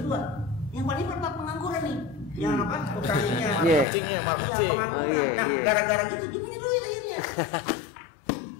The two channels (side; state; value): right; drops out; at 3.9 s